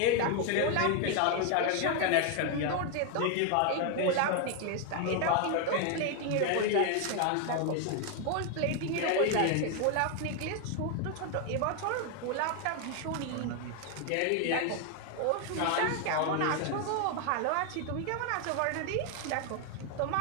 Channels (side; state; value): both; different; correlation 0.01